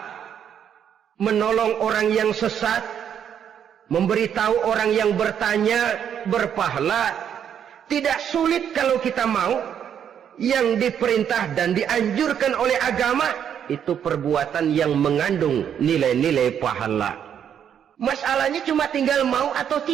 menolong orang yang sesat, memberitahu orang yang bertanya berpahala. Tidak sulit kalau kita mau. Yang diperintah dan dianjurkan oleh agama itu perbuatan yang mengandung nilai-nilai pahala. Masalahnya cuma tinggal mau atau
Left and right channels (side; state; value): left; quieter; 8.8 dB